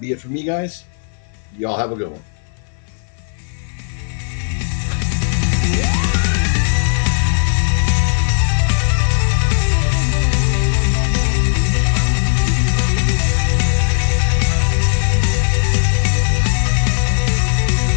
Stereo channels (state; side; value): silent; right; 57 dB below the other